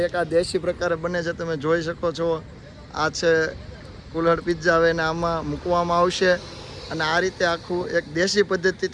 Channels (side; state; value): both; identical; correlation 1.00